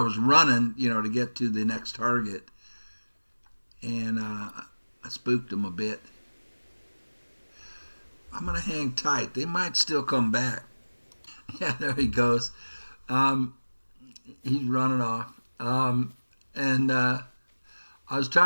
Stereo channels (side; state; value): both; inverted; correlation -1.00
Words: running, to get to the next target. And I spooked him a bit. I'm going to hang tight. They might still come back. Yeah, there he goes. He's running off. And I was